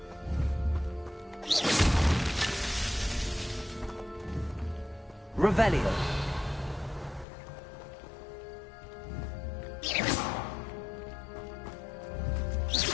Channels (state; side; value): drops out; right; at 7.2 s